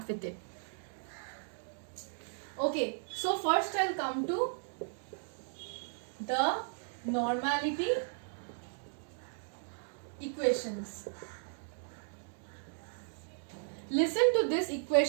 with it. Okay, so first I'll come to the normality equations. Listen to this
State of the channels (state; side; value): silent; left; digital silence